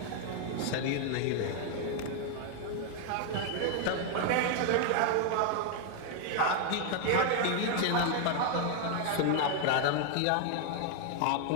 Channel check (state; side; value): different; both; correlation 0.00